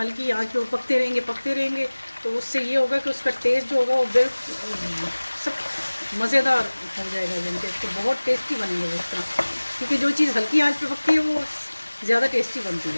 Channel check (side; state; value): both; inverted; correlation -1.00